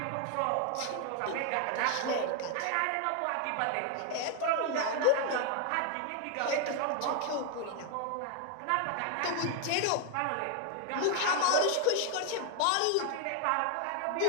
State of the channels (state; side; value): different; both; correlation 0.00